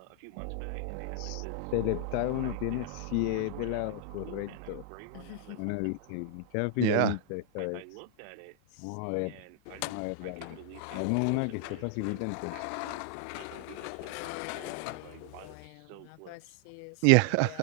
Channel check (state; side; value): different; both; correlation 0.00